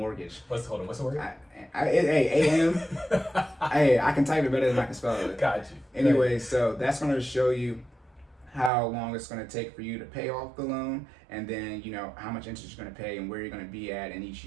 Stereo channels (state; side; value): drops out; left; at 8.7 s